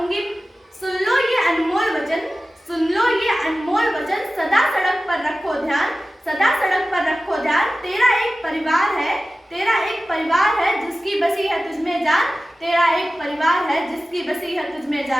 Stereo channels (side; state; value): both; normal; correlation 0.96